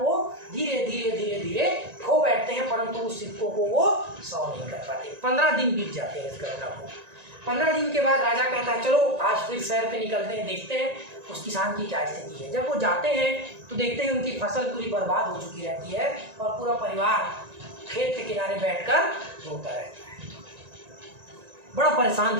धीरे धीरे धीरे धीरे खो बैठते हैं, परंतु उस सिक्कों को वो 100 नहीं कर पाते। 15 दिन बीत जाते हैं इस घटना को। 15 दिन के बाद राजा कहता है चलो आज फिर शहर पे निकलते हैं, देखते हैं उस किसान की क्या स्थिति है। जब वो जाते हैं तो देखते हैं उनकी फसल पूरी बर्बाद हो चुकी रहती है और पूरा परिवार खेत के किनारे बैठकर रोता रहता है, बड़ा परेशान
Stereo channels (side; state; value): left; late; 1.9 ms